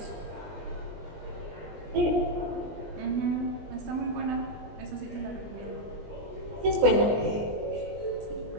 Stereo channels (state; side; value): late; left; 20 ms